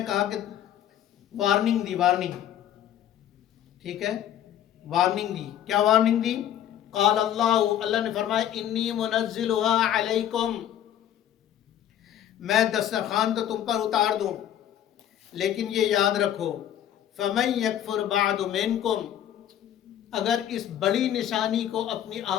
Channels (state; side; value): quieter; right; 10.9 dB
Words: کہا کہ وارننگ دی، وارننگ، ٹھیک ہے، وارننگ دی۔ کیا وارننگ دی؟ قال اللہ نے فرمایا انی منزلها علیکم، میں دسترخوان تو تم پر اتار دوں، لیکن یہ یاد رکھو فمن یکفر بعد منکم، اگر اس بڑی نشانی کو اپنی